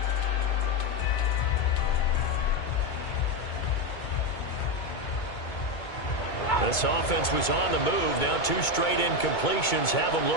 This offense was on the move. Now 2 straight incompletions have them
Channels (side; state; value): right; late; 2.2 ms